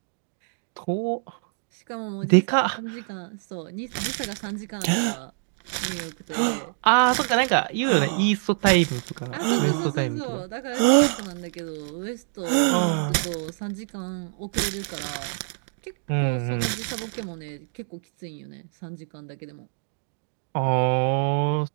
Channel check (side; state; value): left; silent; digital silence